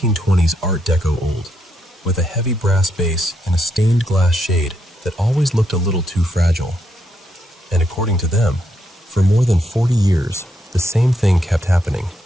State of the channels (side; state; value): both; normal; correlation 0.79